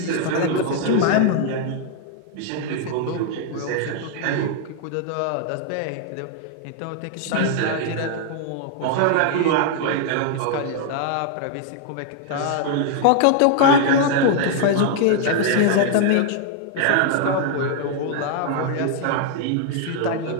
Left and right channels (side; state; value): both; different; correlation 0.00